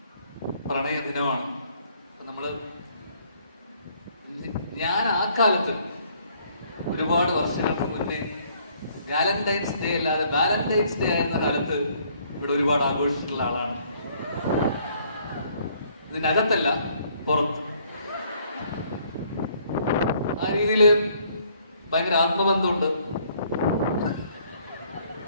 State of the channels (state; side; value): inverted; both; correlation -0.64